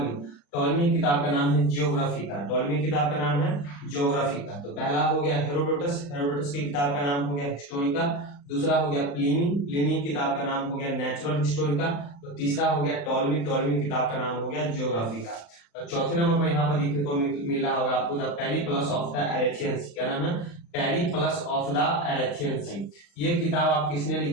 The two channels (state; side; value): late; right; 35 ms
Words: टॉलमी किताब का नाम है जियोग्राफिका। टॉलमी किताब का नाम है जियोग्राफिका। तो पहला हो गया हेरोडोटस। हेरोडोटस की किताब का नाम हो गया हिस्टोरिका। दूसरा हो गया प्लिनी। प्लिनी किताब का नाम हो गया नेचुरल हिस्टोरिका। तो तीसरा हो गया टॉलमी। टॉलमी किताब का नाम हो गया जियोग्राफिका। चौथे नंबर पर यहाँ पर देखने को मिल रहा होगा आपको द पेरिप्लस ऑफ द एरेथियन सी। क्या नाम है? पेरिप्लस ऑफ द एरेथियन सी। ये किताब आप किसने